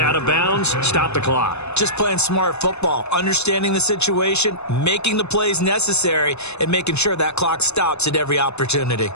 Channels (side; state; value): right; late; 0.81 ms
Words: of bounds, stop the clock. Just playing smart football, understanding the situation, making the plays necessary, and making sure that clock stops at every opportunity.